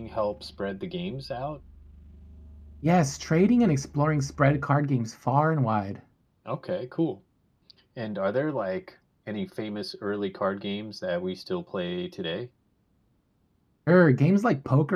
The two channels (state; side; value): identical; both; correlation 1.00